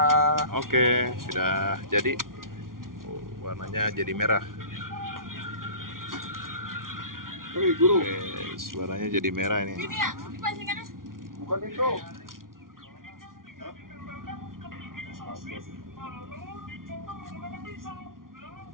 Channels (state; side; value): late; left; 0.91 ms